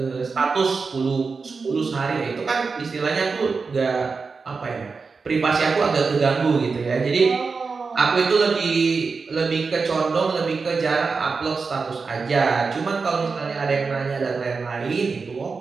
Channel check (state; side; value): quieter; left; 4.7 dB